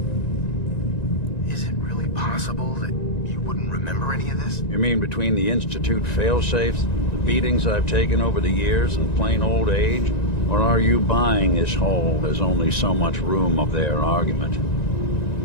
Is it really possible that you wouldn't remember any of this? You mean between the Institute failsafes, the beatings I've taken over the years, and plain old age? Or are you buying this whole "there's only so much room" of their argument?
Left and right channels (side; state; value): right; late; 1.9 ms